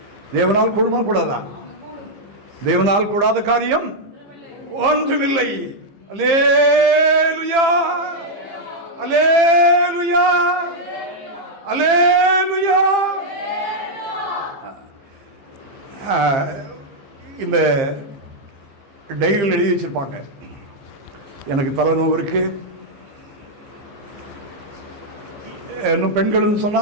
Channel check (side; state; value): left; late; 15 ms